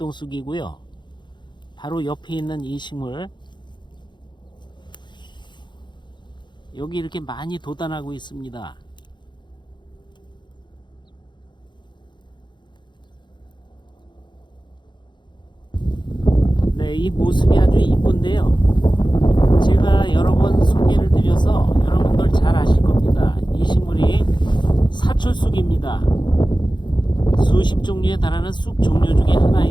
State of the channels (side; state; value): right; late; 0.22 ms